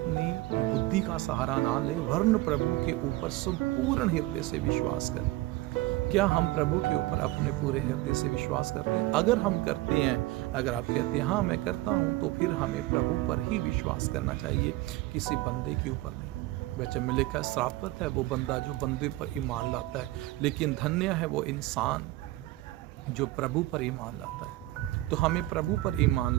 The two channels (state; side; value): quieter; left; 18.2 dB